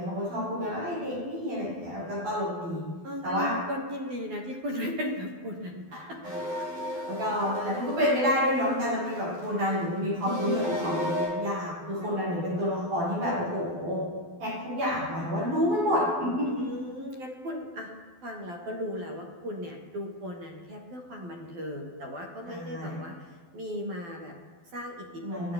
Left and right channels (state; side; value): late; left; 12 ms